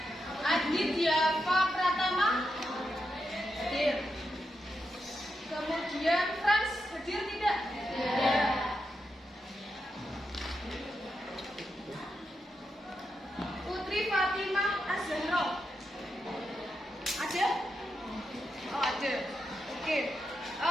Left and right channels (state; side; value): normal; both; correlation 0.85